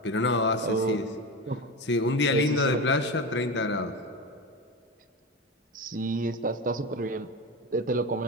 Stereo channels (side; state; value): both; normal; correlation 0.22